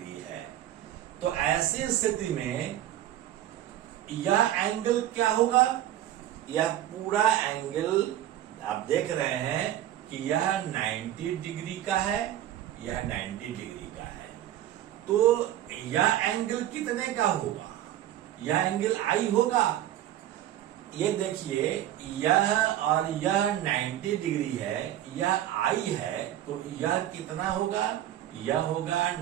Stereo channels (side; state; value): left; quieter; 12.4 dB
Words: है। तो ऐसी स्थिति में यह एंगल क्या होगा? यह पूरा एंगल आप देख रहे हैं कि यह 90 डिग्री का है, यह 90 डिग्री का है। तो यह एंगल कितने का होगा? यह एंगल I होगा। ये देखिए, यह और यह 90 डिग्री है, यह I है, तो यह कितना होगा? यह होगा